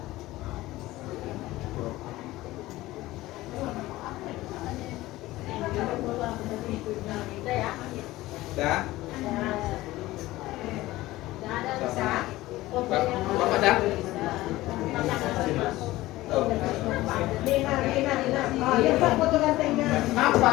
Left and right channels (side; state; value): right; quieter; 17.6 dB